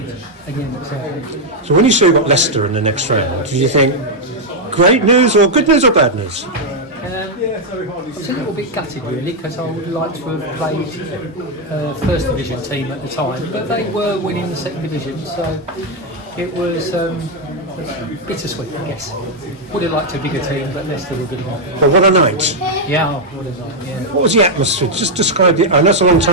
again at Southend. So when you saw you got Leicester in the next round, did you think great news or good news or bad news? I was a little bit gutted really, because I would like to have played first division team at the time, but they were winning the second division, so it was bittersweet, I guess. Would have liked a bigger team, but Leicester were good one. But what a night! Yeah, what a night. Yeah. What was the atmosphere? Just describe the. I know it's a long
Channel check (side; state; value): both; normal; correlation 0.00